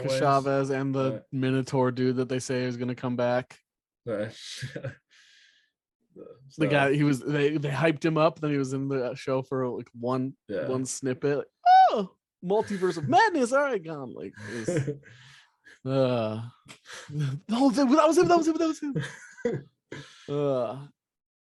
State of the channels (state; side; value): identical; both; correlation 1.00